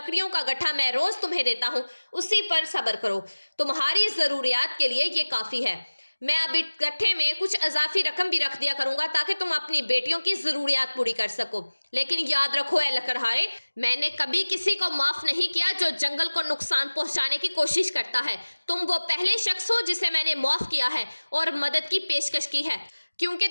کا گٹھا میں روز تمہیں دیتا ہوں اسی پر صبر کرو، تمہاری ضروریات کے لیے یہ کافی ہے۔ میں اب اس گٹھے میں کچھ اضافی رقم بھی رکھ دیا کروں گا تاکہ تم اپنی بیٹیوں کی ضروریات پوری کر سکو۔ لیکن یاد رکھو اے لکڑہارے، میں نے کبھی کسی کو معاف نہیں کیا جو جنگل کو نقصان پہنچانے کی کوشش کرتا ہے۔ تم وہ پہلے شخص ہو جسے میں نے معاف کیا ہے اور مدد کی پیشکش کی ہے کیونکہ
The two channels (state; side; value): inverted; both; correlation -1.00